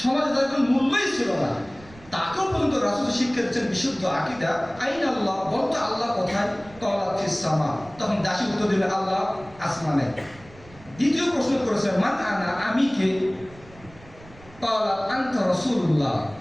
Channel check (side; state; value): right; noise; rumble, 22 dB below the sound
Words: সমাজে তাদের কোনো মূল্যই ছিল না, তাকেও পর্যন্ত রাসূল শিক্ষা দিচ্ছেন বিশুদ্ধ আকীদা। আইন আল্লাহ, বলতো আল্লাহ কোথায়? ক্বালাত ফিস সামা, তখন দাসী উত্তর দিল আল্লাহ আসমানে। দ্বিতীয় প্রশ্ন করেছেন মান আনা, আমি কে? ক্বালাত আনতা রাসূলুল্লাহ,